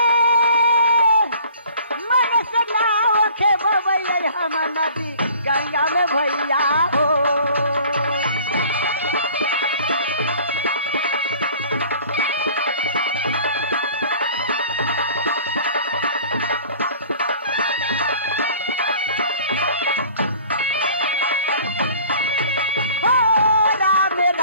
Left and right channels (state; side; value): inverted; both; correlation -0.49